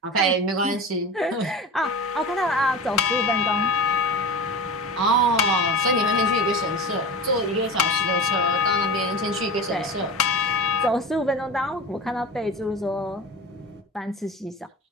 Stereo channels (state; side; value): normal; both; correlation 0.31